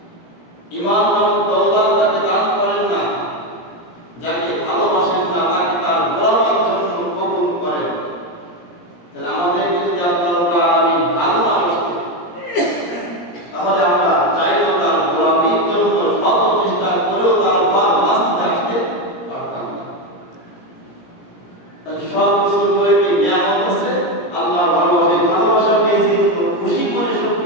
ঈমান নামক দৌলত তাকে দান করেন না, যাকে ভালোবাসেন না তাকে তার গোলামীর জন্য কবুল করেন। তাহলে আমাদের যদি আল্লাহ রাব্বুল আলামিন ভালোবাসেন তাহলে আমরা চাইলেও তার গোলামীর জন্য শত চেষ্টা করেও তার ঘর বাঁচতে আসতে পারতাম না। তাহলে সব কিছু করে কি নিয়ামত আছে আল্লাহ ভালোবাসেন। ভালোবাসা পেয়েছি কিন্তু খুশি করে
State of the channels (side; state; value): right; late; 17 ms